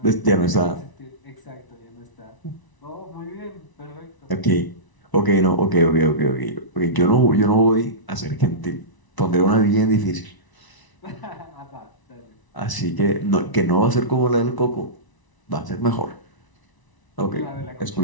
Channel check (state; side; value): late; right; 1.0 ms